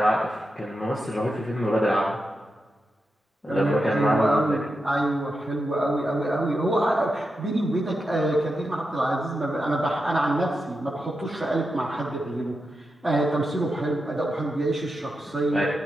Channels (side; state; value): both; normal; correlation 0.88